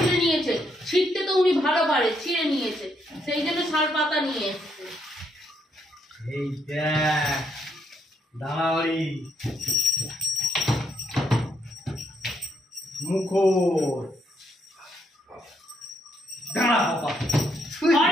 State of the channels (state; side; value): normal; both; correlation 0.75